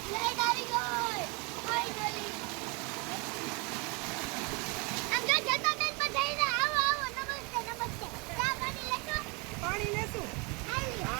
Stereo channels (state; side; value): quieter; left; 30.0 dB